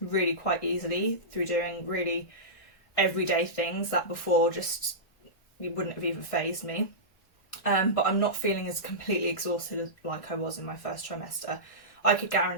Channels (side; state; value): right; late; 1.6 ms